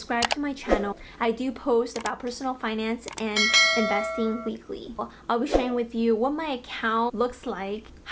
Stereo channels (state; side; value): identical; both; correlation 1.00